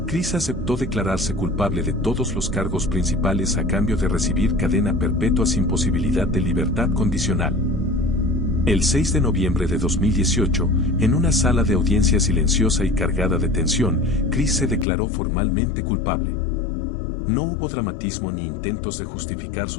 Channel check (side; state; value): right; drops out; at 14.9 s